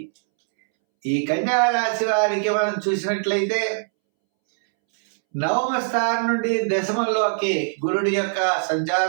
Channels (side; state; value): left; silent; 64 dB below the other